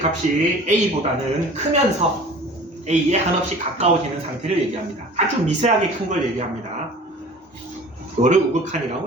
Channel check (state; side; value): normal; both; correlation 0.43